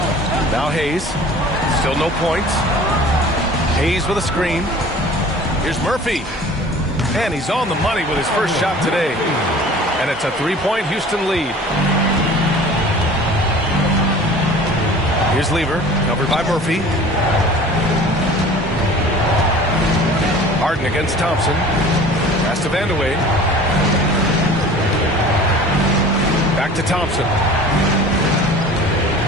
Now Hayes. Still no points. Hayes with a screen. Here's Murphy. And he's on the money with his first shot today. And it's a 3-point Houston lead. Here's Lever, covered by Murphy. Harden against Thompson. Pass to Vandeweghe. Back to Thompson.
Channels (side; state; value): both; normal; correlation 0.44